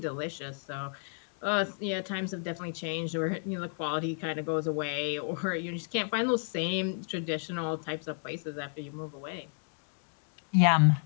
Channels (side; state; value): right; silent; 56 dB below the other